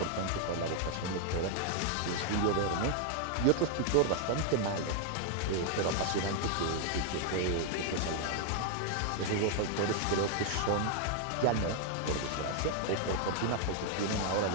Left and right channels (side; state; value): both; different; correlation 0.00